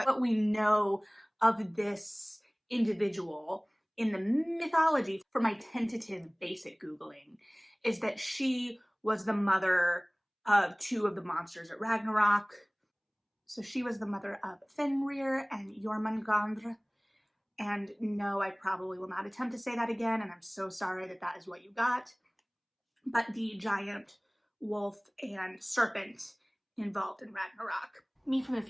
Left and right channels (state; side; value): identical; both; correlation 1.00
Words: what we know of this individual in the mythology from my tentative basic Googling is that she was the mother of two of the monsters at Ragnarok. So she was the mother of Fenrir and Jormungandr. And no, I probably will not attempt to say that again, and I'm so sorry that that is what you got. But the giant wolf and serpent involved in Ragnarok. Me from the